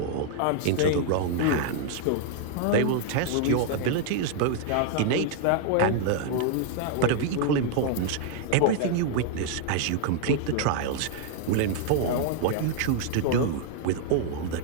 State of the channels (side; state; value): both; different; correlation 0.00